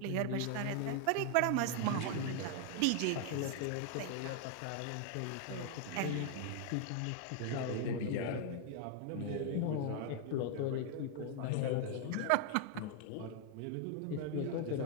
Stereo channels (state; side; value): different; both; correlation 0.00